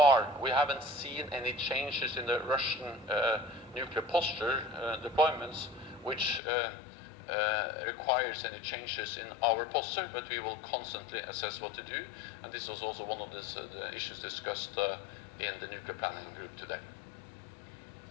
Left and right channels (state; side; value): drops out; right; at 6.4 s